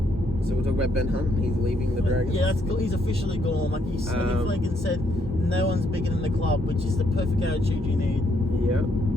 So we'll talk about Ben Hunt. He's leaving the Dragons. Yeah, he's officially gone. Like Flanagan said, no one's bigger than the club, which is the perfect attitude you need. Yeah,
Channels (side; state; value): both; normal; correlation 0.73